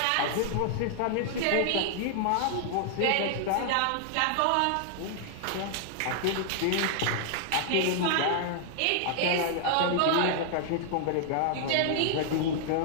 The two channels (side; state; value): both; different; correlation -0.01